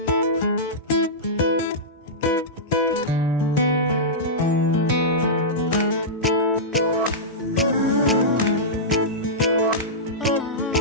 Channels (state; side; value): normal; both; correlation -0.14